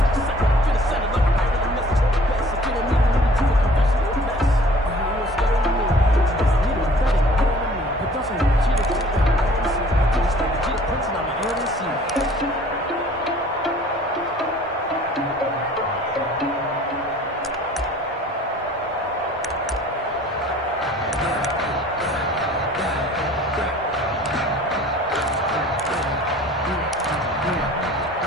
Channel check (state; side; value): normal; both; correlation 0.51